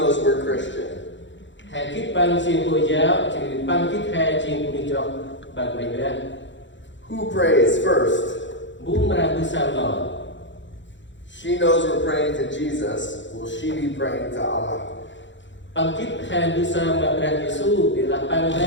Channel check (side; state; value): right; late; 0.54 ms